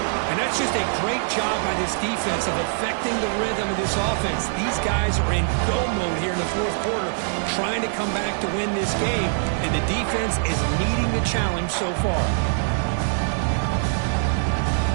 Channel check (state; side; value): silent; left; digital silence